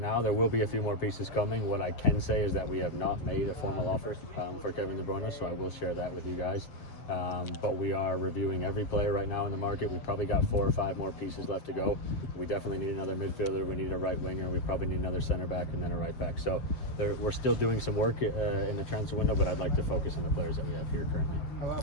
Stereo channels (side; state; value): right; late; 7.5 ms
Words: There will be a few more pieces coming. What I can say is that we have not made a formal offer for Kevin de Bruyne, so I will share that with you guys. But we are reviewing every player right now in the market. We've probably got 4 or 5 more pieces left to go. We definitely need another midfielder. We need a right winger. We probably need another center back and then a right back. So we're still doing some work in the transfer window, but I'd like to focus on the players that we have here currently. How about